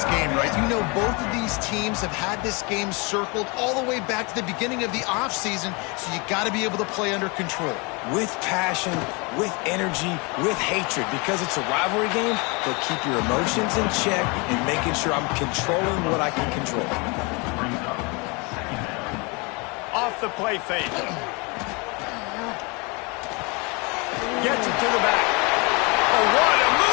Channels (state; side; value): quieter; right; 29.3 dB